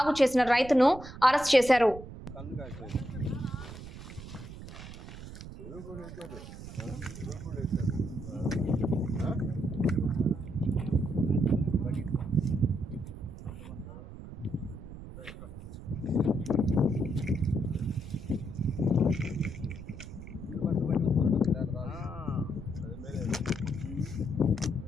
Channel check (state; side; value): noise; right; rumble, 13 dB below the sound